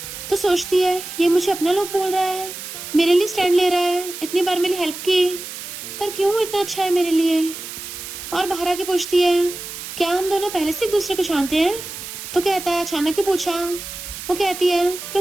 तो सोचती है ये मुझे अपना लोग बोल रहा है, मेरे लिए स्टैंड ले रहा है, इतनी बार मेरी हेल्प की, पर क्यों इतना अच्छा है मेरे लिए। और बाहर आके पूछती है क्या हम दोनों पहले से एक दूसरे को जानते हैं? तो कहता है अचानक ही पूछा। वो कहती है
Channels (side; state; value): right; noise; hiss, 10 dB below the sound